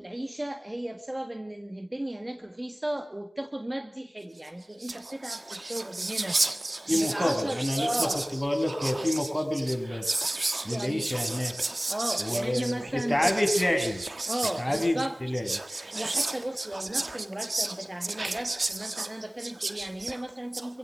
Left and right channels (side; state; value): both; normal; correlation 0.98